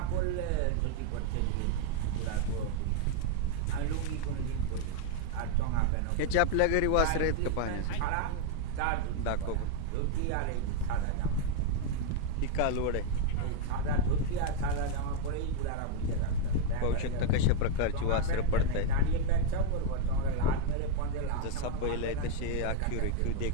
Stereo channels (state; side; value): different; both; correlation 0.00